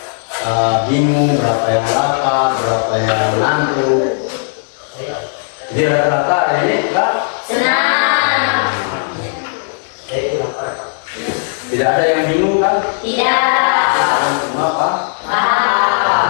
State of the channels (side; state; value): right; silent; digital silence